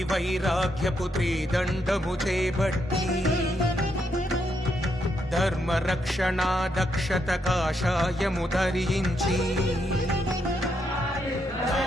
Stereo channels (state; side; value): normal; both; correlation 0.79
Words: వైరాగ్యపు త్రిదండము చేపట్టి ధర్మ రక్షణ దక్షత కాషాయము ధరించి